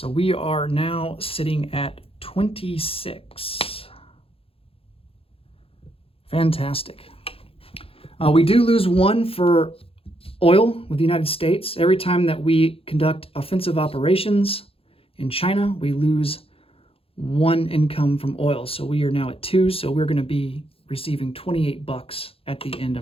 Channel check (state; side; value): late; right; 0.27 ms